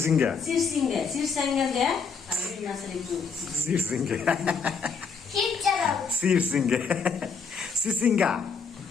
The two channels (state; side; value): quieter; right; 5.4 dB